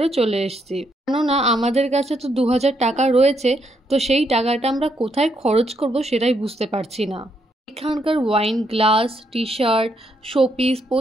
চলে এসেছি, কেননা আমাদের কাছে তো 2000 টাকা রয়েছে, তো সেই টাকাটা আমরা কোথায় খরচ করব সেটাই বুঝতে পারছি না। এখানকার wine glass, T shirt, showpiece,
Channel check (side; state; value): both; normal; correlation 0.76